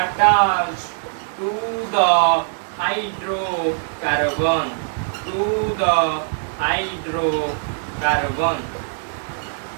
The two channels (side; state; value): left; silent; digital silence